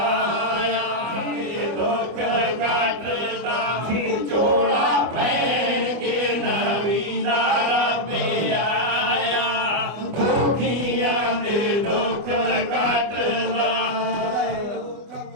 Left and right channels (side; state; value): left; late; 24 ms